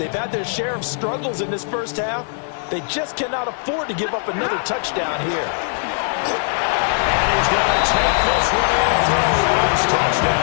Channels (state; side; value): silent; right; 55 dB below the other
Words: had their share of struggles in this first half. They just cannot afford to give up another touchdown here. And he's going to take this one in for a Rams